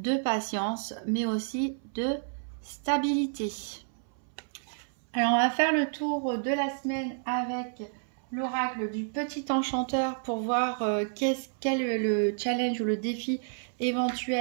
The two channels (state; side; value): silent; left; 58 dB below the other